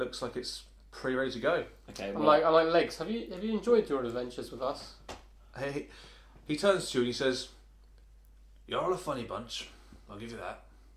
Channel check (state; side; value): identical; both; correlation 1.00